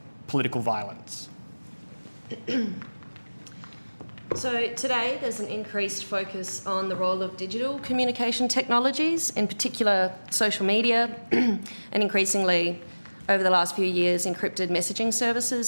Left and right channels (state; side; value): inverted; both; correlation -1.00